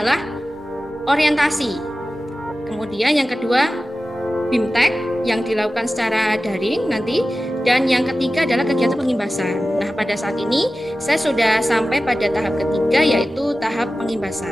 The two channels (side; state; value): both; normal; correlation 0.95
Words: orientasi. Kemudian yang kedua BIMTEK yang dilakukan secara daring nanti, dan yang ketiga adalah kegiatan pengimbasan. Nah, pada saat ini saya sudah sampai pada tahap ketiga, yaitu tahap